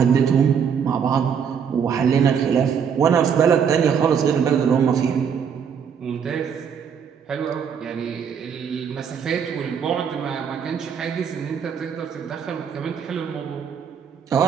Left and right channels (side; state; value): left; quieter; 7.3 dB